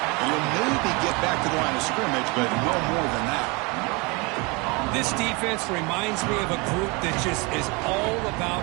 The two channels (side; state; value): left; quieter; 27.9 dB